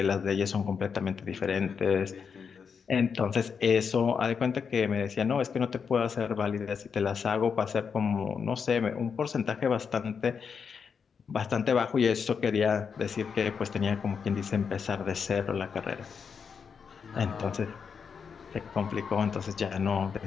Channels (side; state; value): right; quieter; 6.3 dB